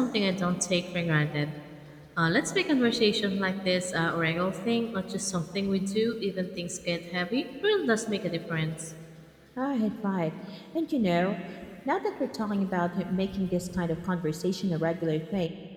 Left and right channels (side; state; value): both; identical; correlation 1.00